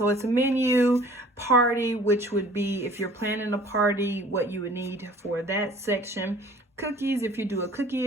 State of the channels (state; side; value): normal; both; correlation 0.51